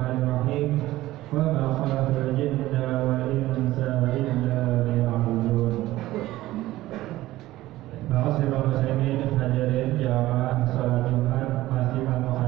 Wa ma khalaqtul jinna wal insa illa liya'budun. Ma'asyiral muslimin hadirin jamaah salat Jumat, masjidil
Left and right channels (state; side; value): quieter; left; 16.4 dB